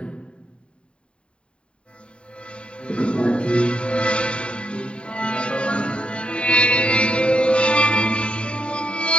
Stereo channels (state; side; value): late; right; 0.055 ms